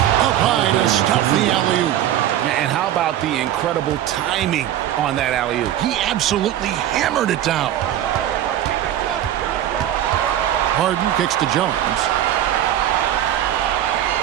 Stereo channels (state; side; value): quieter; left; 11.8 dB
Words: high to stuff the alley-oop. And how about the incredible timing on that alley-oop? He absolutely hammered it down. Harden kicks to Jones.